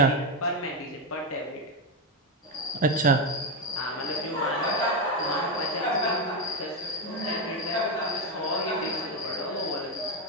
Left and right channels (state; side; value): normal; both; correlation 0.08